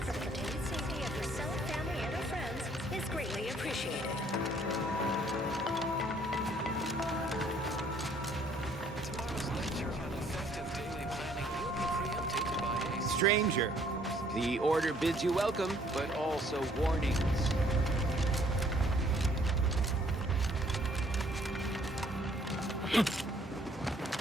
the continued safety of yourself, family, and your friends is greatly appreciated. Stranger, the order bids you welcome, but also warnings.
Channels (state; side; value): normal; both; correlation 0.62